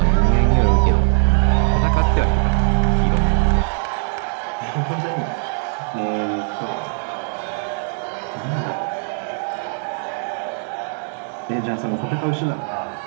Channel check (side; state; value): left; silent; digital silence